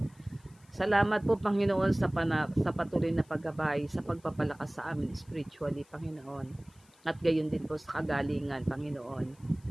Salamat po, Panginoon, sa patuloy na paggabay, sa pagpapalakas sa amin spiritually, Panginoon. At gayon din po sa kagalingan, Panginoon,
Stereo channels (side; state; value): left; noise; hiss, 30 dB below the sound